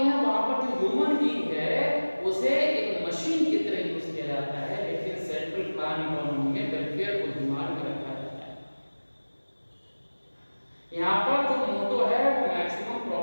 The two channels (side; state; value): both; inverted; correlation -1.00